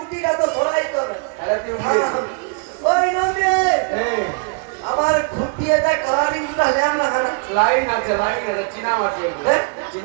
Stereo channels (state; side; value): quieter; left; 37.1 dB